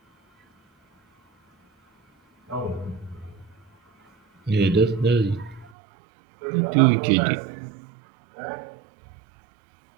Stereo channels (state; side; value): drops out; left; at 5.7 s